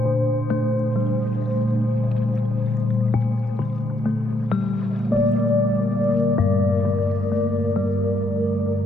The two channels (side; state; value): both; normal; correlation 0.75